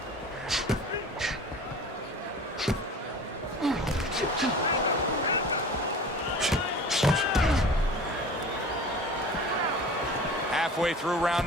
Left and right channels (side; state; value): both; normal; correlation 0.39